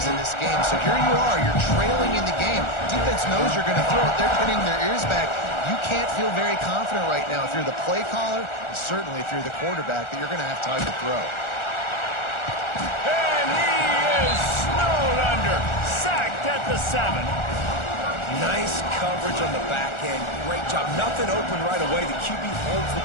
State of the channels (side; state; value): right; late; 1.4 ms